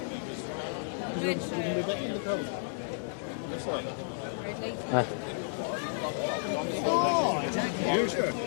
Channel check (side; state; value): right; silent; digital silence